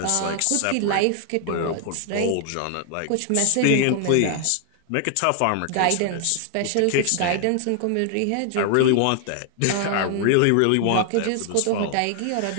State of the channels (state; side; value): different; both; correlation 0.00